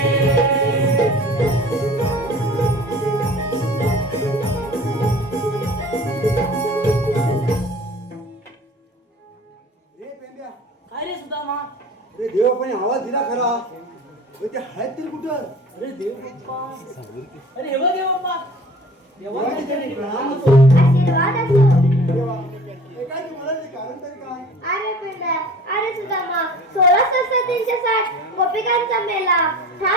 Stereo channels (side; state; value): both; normal; correlation 0.44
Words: काय रे सुदामा? अरे देवापणे आवाज दिला खरा पण ते आहेत तरी कुठं अरे देव बाप्पा, अरे हे बघ देव बाप्पा, देवाने तरी प्रणाम होतो. आशीर्वाद असो. देवा हे काय तू म्हणाल कारण तरी काय अरे पिंड्या, अरे सुदामा, 16,360 गोपिकांचा मेला